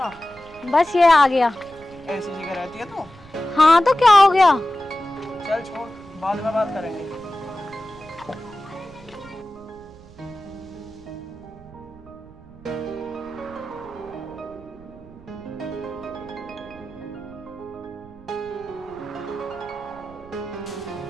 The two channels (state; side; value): noise; right; rumble, 22 dB below the sound